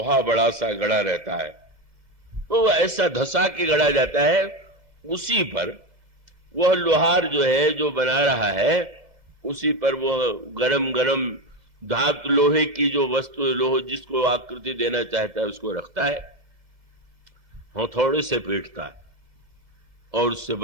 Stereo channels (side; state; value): left; late; 2.0 ms